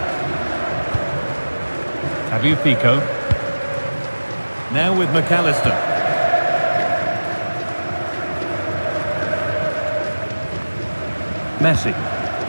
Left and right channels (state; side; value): inverted; both; correlation -1.00